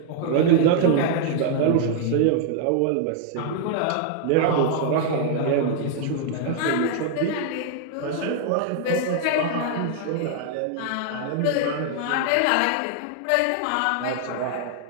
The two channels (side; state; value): both; different; correlation 0.00